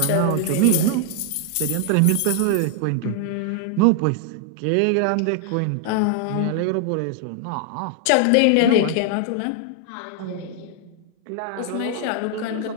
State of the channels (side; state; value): both; different; correlation 0.00